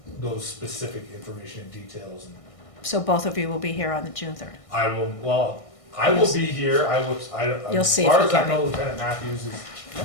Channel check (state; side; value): late; right; 1.6 ms